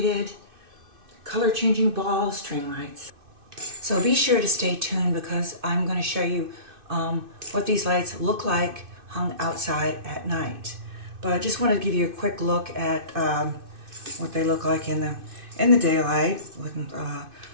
color changing ball string lights. So be sure to stay tuned because I'm going to show you what these lights look like hung outside at night. But I just wanted to give you a quick look at what they look like in the daylight.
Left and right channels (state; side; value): late; left; 2.6 ms